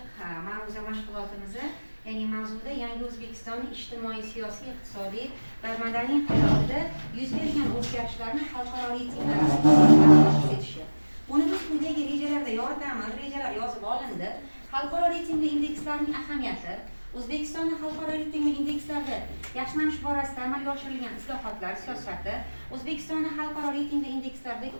ma'ruza mashg'ulotimizni, ya'ni mavzuda yangi O'zbekistonning ijtimoiy, siyosiy, iqtisodiy va madaniy hayotida yuz bergan o'zgarishlarni xalqaro reytinglar asosida etishi. Buni biz quyidagi rejalarda yoritamiz. Rejalar yozib olindi. Xalqaro reytingli indekslarning ahamiyati, O'zbekistonning xalqaro reytingli indekslarda yaxshilanish borasida amalga oshirilgan islohotlar siyosati, O'zbekistonning xalqaro reytingli indekslardagi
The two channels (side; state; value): both; inverted; correlation -1.00